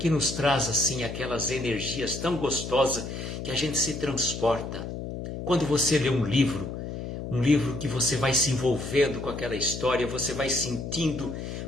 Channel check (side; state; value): left; noise; hum, 7 dB below the sound